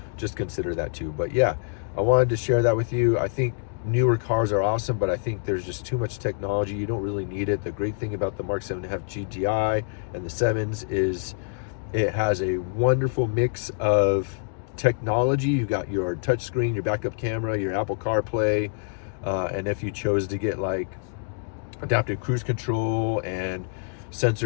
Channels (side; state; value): right; silent; digital silence